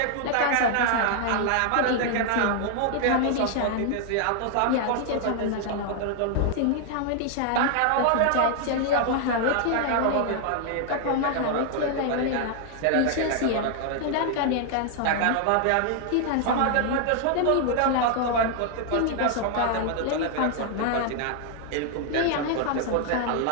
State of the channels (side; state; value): both; different; correlation 0.00